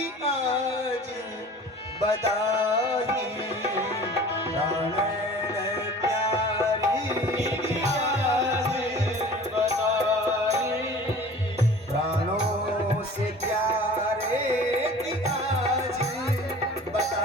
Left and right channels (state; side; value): normal; both; correlation 0.43